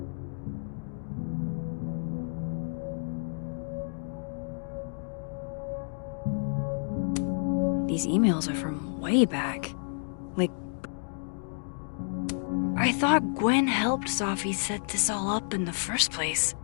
These emails are from way back. Like... I thought Gwen helped Safi set this all up in the first place.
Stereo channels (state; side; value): silent; right; digital silence